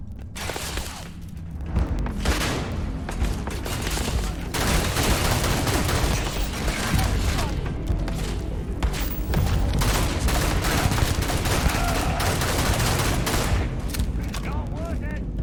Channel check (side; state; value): both; identical; correlation 1.00